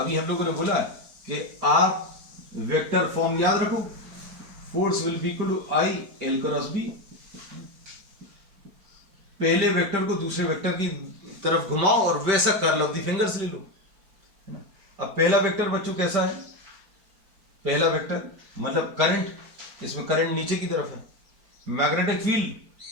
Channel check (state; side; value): late; left; 5.2 ms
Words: हम लोगों ने बोला कि आप वेक्टर फॉर्म याद रखो, force will be equal to I L cross B। पहले वेक्टर को दूसरे वेक्टर की तरफ घुमाओ और वैसा कर्ल ऑफ द फिंगर्स ले लो, है ना। अब पहला वेक्टर बच्चों कैसा है? पहला वेक्टर मतलब करंट, इसमें करंट नीचे की तरफ है, मैग्नेटिक फील्ड